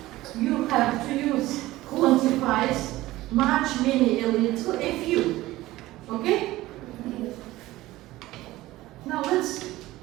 You have to use quantifies much, many, a little, a few. Okay? Now let's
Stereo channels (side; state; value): left; quieter; 17.3 dB